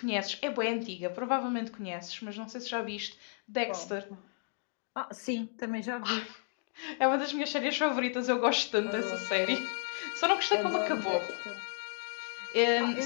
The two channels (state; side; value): silent; right; 56 dB below the other